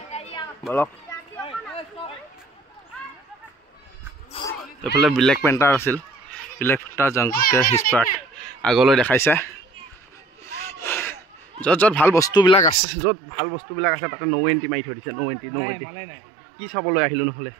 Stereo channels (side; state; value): left; drops out; at 12.8 s